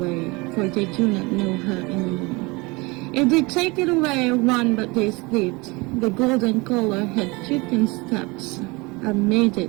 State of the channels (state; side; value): quieter; left; 25.6 dB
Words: for they do not know her anymore. If they take it away, run, but they slipped. The golden color had taken steps and made